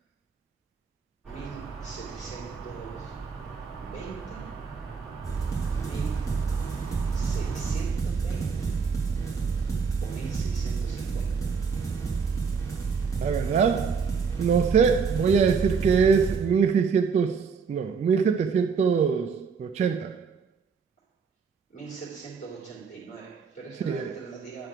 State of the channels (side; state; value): left; quieter; 5.7 dB